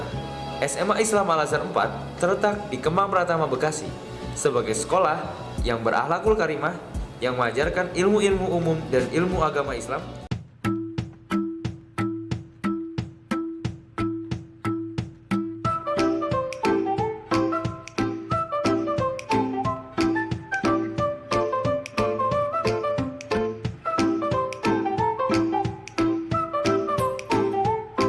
SMA Islam Al-Azhar 4 terletak di Kemang Pratama, Bekasi, sebagai sekolah yang berakhlakul karimah, yang mengajarkan ilmu-ilmu umum dan ilmu agama Islam.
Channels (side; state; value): both; identical; correlation 1.00